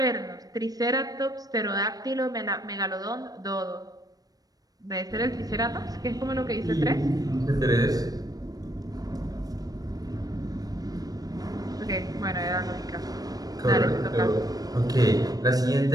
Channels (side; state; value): left; late; 0.18 ms